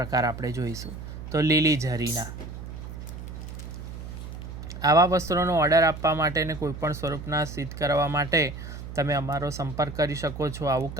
આપણે જોઈશું। તો લીલી ઝરીના આવા વસ્ત્રોનો ઓર્ડર આપવા માટે ને કોઈપણ સ્વરૂપના સિદ્ધ કરવા માટે તમે અમારો સંપર્ક કરી શકો છો। આવું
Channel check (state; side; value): noise; right; hum, 10 dB below the sound